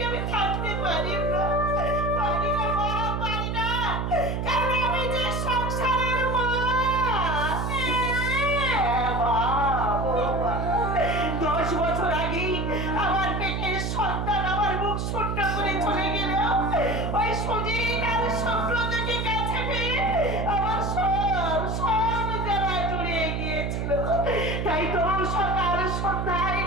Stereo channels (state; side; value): noise; right; hum, 1 dB below the sound